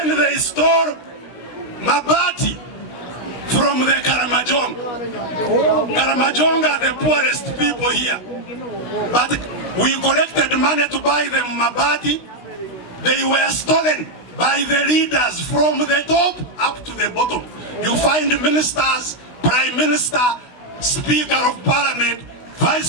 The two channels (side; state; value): right; late; 16 ms